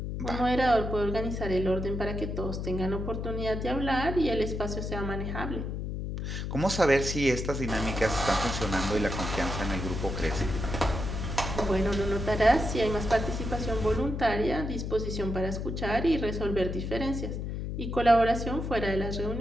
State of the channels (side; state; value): left; noise; hum, 4 dB below the sound